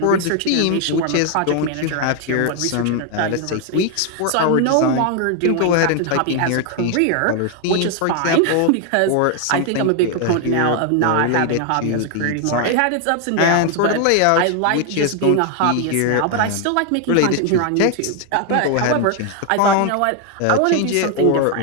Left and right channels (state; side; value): different; both; correlation 0.01